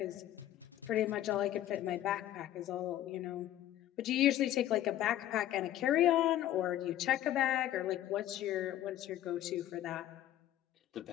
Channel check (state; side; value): quieter; right; 13.0 dB